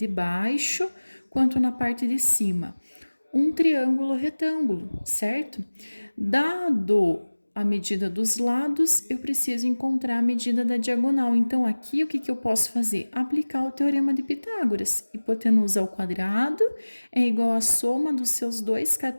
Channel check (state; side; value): inverted; both; correlation -1.00